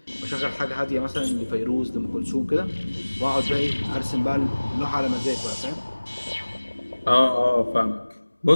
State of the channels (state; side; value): inverted; both; correlation -1.00